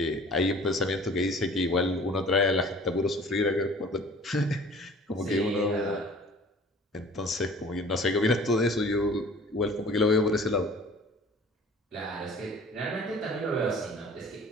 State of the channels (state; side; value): normal; both; correlation 0.48